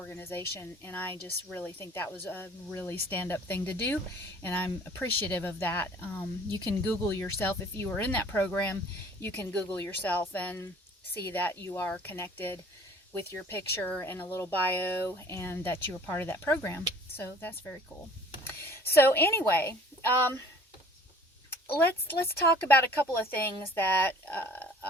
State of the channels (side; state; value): both; normal; correlation 0.51